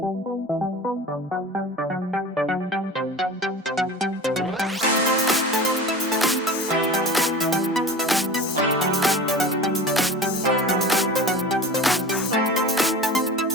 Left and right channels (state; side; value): normal; both; correlation 0.34